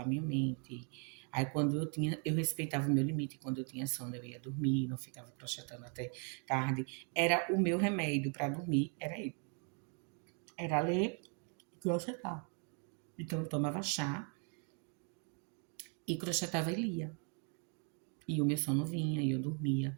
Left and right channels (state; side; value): quieter; left; 39.8 dB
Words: minha mente. Aí quando eu respeitava o meu limite, quando eu tinha sono eu ia dormir, não ficava crochetando até tarde. Era o meu remédio para dormir, era ele. Era ler e crochetar. Então eu tomava chá e crochetava e lia. E o meu sono vinha, e eu